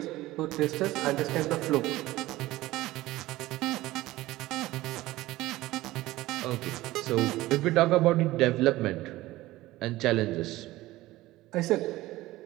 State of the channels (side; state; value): left; quieter; 17.5 dB